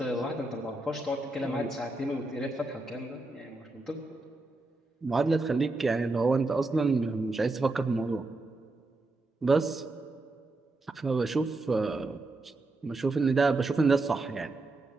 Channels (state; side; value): quieter; left; 3.1 dB